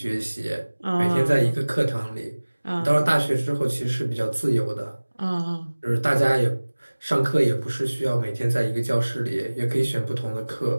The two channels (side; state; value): both; inverted; correlation -1.00